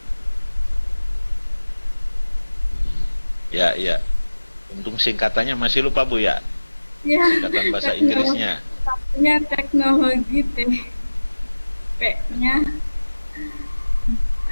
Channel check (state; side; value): inverted; both; correlation -1.00